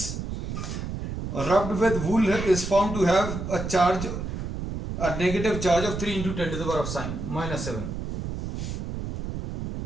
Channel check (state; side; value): noise; right; rumble, 5 dB below the sound